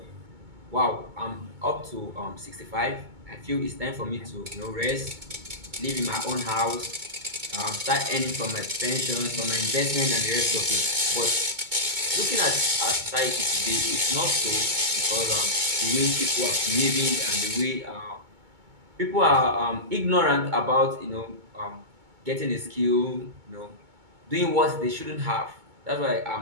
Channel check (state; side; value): late; left; 2.2 ms